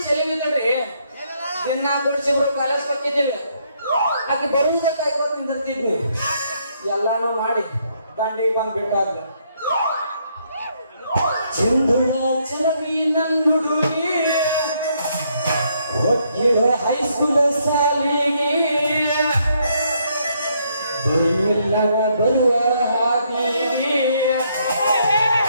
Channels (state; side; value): inverted; both; correlation -0.72